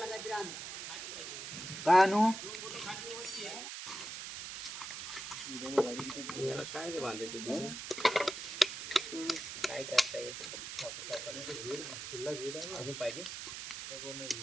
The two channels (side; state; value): right; noise; hiss, 7 dB below the sound